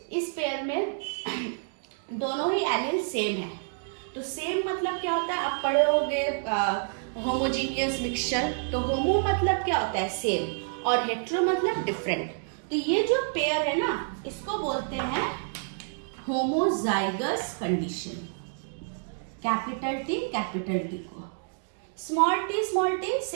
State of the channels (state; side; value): silent; left; digital silence